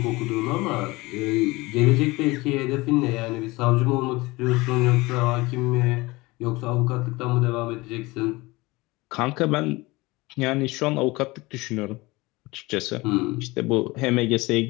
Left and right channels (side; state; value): right; quieter; 22.2 dB